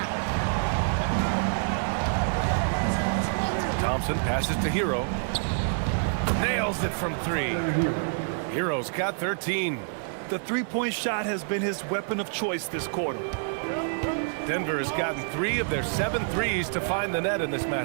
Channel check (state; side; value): silent; left; digital silence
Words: Thompson passes to Hero. Nails it from 3. Hero's got 13. The three-point shot has been his weapon of choice this quarter. Denver has gotten 3 of their 7 threes to find the net in this